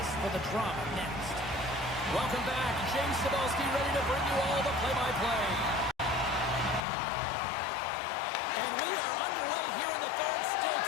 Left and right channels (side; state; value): right; drops out; at 6.9 s